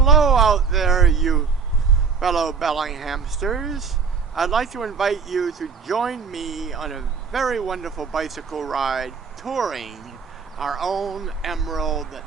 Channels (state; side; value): quieter; left; 5.7 dB